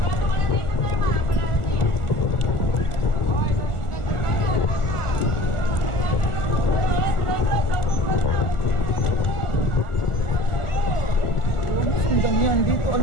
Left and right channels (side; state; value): right; late; 1.4 ms